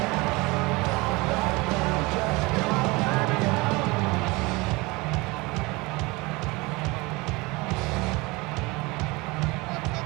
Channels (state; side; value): quieter; left; 24.1 dB